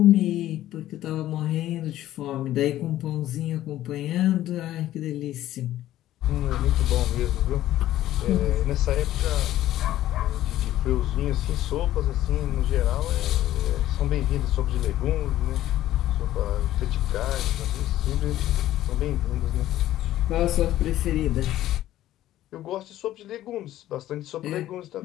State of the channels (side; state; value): right; quieter; 13.7 dB